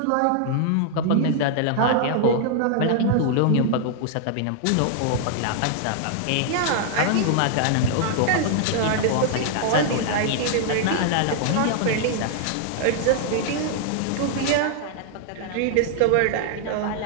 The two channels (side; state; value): both; different; correlation -0.01